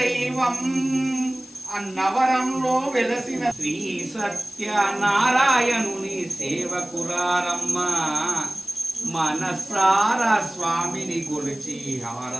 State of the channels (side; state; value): left; noise; hiss, 23 dB below the sound